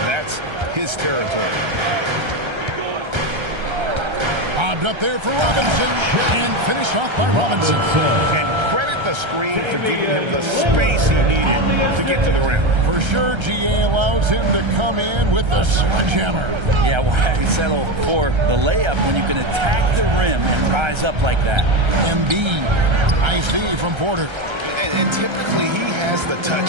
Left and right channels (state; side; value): late; left; 1.3 ms